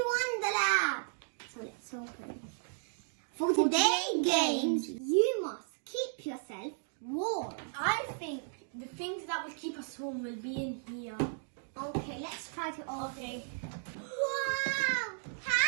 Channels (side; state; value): left; silent; digital silence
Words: Wonderlab. So let's open. For today's games, you must keep yourself warm. I think the things that will keep us warm will be in here. Okay, let's try to open. Okay. Wow!